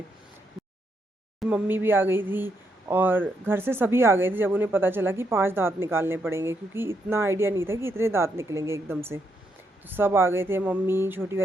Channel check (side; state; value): both; normal; correlation 0.78